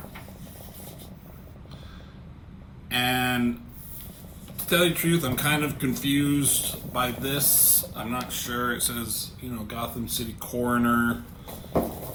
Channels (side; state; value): both; identical; correlation 1.00